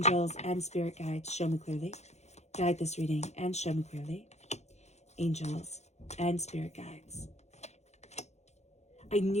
and spirit guides, show me clearly. Guide this reading and show me clearly. Angels and spirit guides. I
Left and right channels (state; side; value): late; right; 0.32 ms